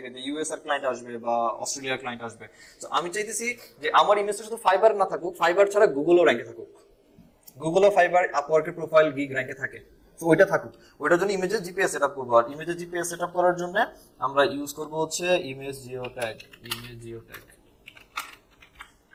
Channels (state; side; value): identical; both; correlation 1.00